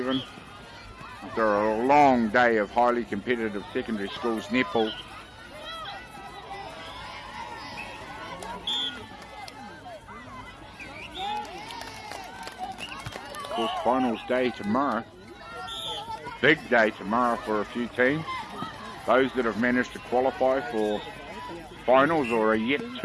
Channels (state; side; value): identical; both; correlation 1.00